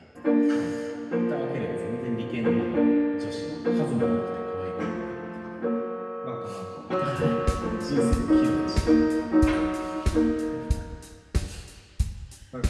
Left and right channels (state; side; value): identical; both; correlation 1.00